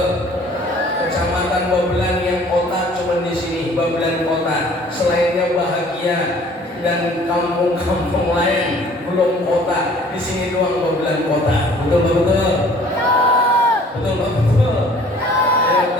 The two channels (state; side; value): normal; both; correlation 0.53